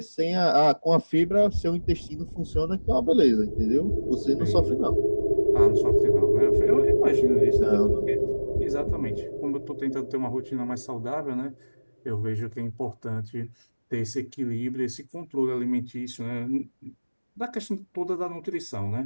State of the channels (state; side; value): inverted; both; correlation -1.00